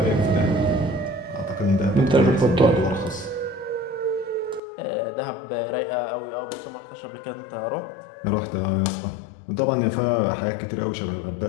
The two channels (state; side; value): drops out; right; at 4.6 s